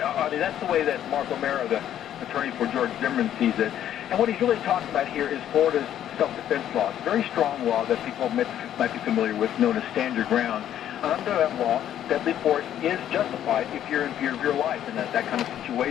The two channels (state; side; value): quieter; right; 10.9 dB